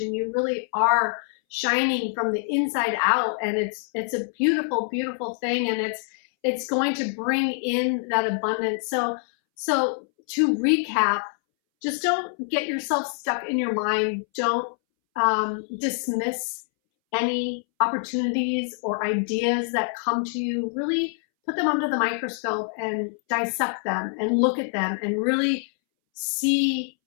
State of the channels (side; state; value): right; silent; 62 dB below the other